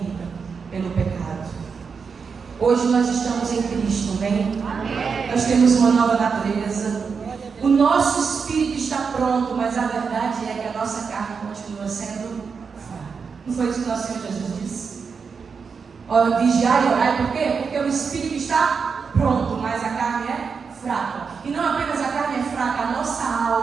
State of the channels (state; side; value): quieter; left; 5.6 dB